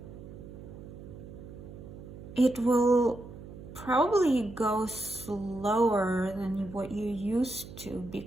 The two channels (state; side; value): noise; right; hum, 14 dB below the sound